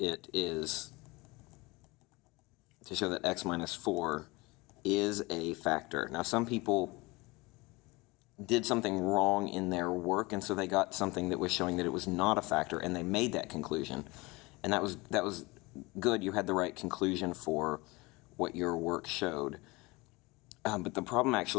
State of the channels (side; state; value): right; quieter; 23.8 dB